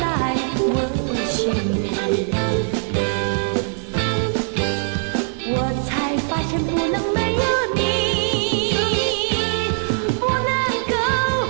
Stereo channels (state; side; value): silent; left; digital silence